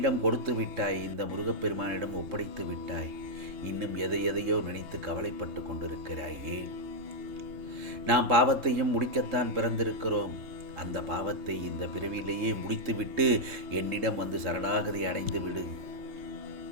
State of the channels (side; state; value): left; late; 3.7 ms